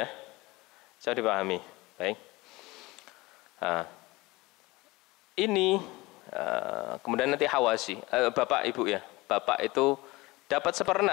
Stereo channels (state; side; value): quieter; right; 21.6 dB